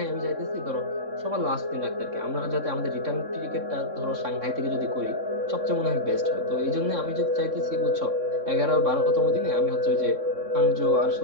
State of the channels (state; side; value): late; left; 3.6 ms